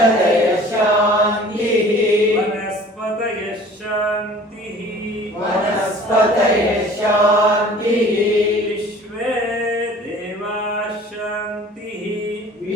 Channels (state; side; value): normal; both; correlation 0.48